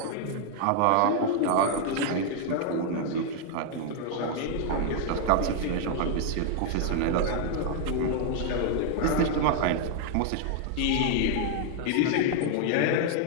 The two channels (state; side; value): different; both; correlation 0.00